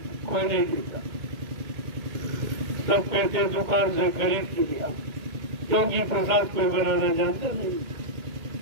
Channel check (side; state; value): left; late; 2.2 ms